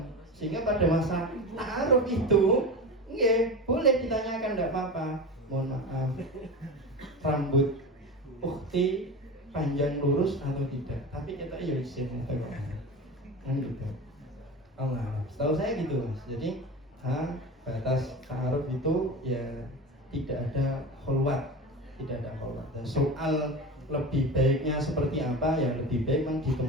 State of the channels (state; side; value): normal; both; correlation 0.27